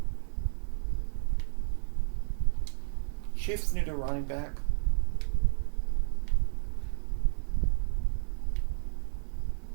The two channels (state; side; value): silent; left; digital silence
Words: Chiefs need a running back.